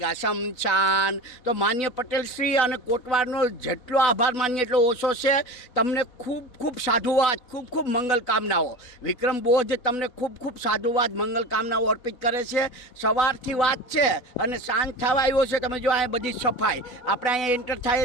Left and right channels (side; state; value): right; late; 4.0 ms